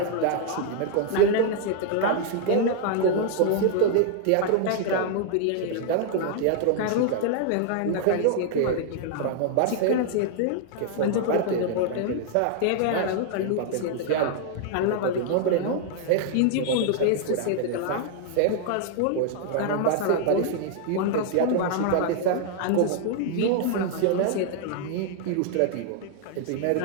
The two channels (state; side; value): different; both; correlation 0.00